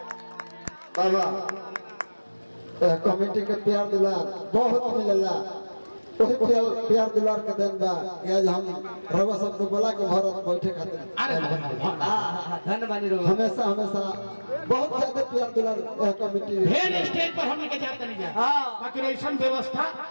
बाबा कमेटी के प्यार दुलार बहुत मिलेला वही प्यार दुलार के देन बा आज हम रवा सब को बोला के भारत बैठे खातिर अरे धन्यवाद रो हमेशा हमेशा बहुत ज्यादा प्यार दुलार कमेटी ढेर स्टेज पर हमने के जाते नहीं जा बाकी ऐसा व्यवस्था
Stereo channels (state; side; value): inverted; both; correlation -1.00